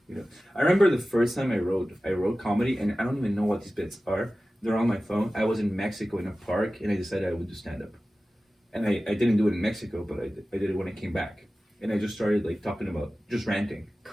I remember the first time I wrote comedy, and I don't even know what these bits are. They're on my phone. I was in Mexico in a park, and I decided I would do stand up. And I didn't do it in Mexico, but I did it when I came back, and I just started like talking about just ranting.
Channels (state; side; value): normal; both; correlation 0.95